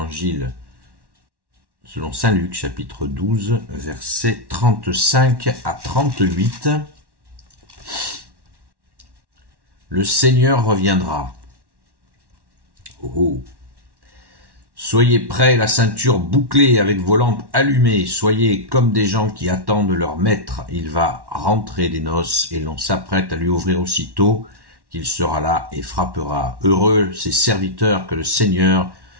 selon Saint Luc, chapitre 12, versets 35 à 38. Le Seigneur reviendra. Oh. Soyez prêts, la ceinture bouclée avec vos lampes allumées. Soyez comme des gens qui attendent leur maître. Il va rentrer des noces et l'on s'apprête à lui ouvrir aussitôt qu'il sera là et frappera. Heureux ces serviteurs que le Seigneur,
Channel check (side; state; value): left; late; 1.1 ms